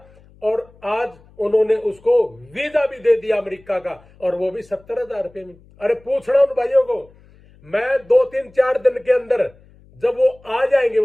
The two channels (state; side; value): noise; left; hum, 27 dB below the sound